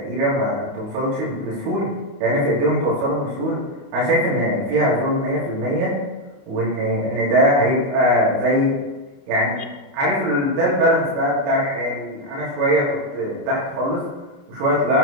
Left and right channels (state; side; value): late; left; 28 ms